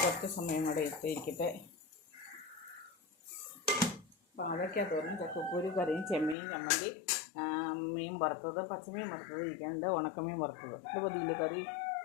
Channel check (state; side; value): drops out; right; at 6.4 s